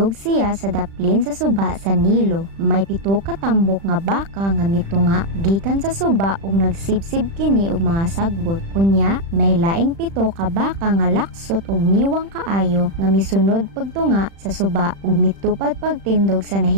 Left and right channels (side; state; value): left; late; 36 ms